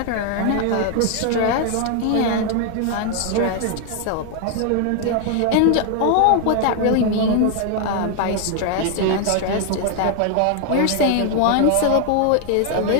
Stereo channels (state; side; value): different; both; correlation 0.00